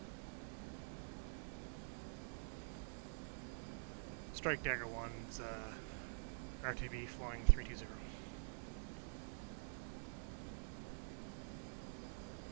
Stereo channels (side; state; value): left; silent; digital silence